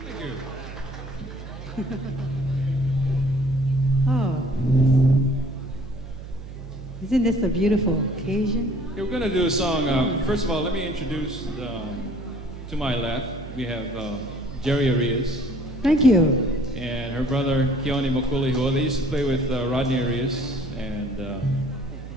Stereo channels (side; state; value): right; noise; hum, 12 dB below the sound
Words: Thank you. Oh. Isn't this a beautiful occasion? Okay, we're going to do a song. First of all, let me introduce to my left, we have Jerry Arias Thank you. and her brother Keone Mokulihoa. They used to play with Rodney Arias and